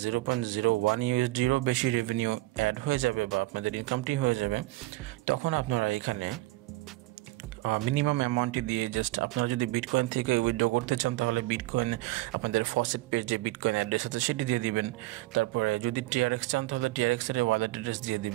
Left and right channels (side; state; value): left; quieter; 19.3 dB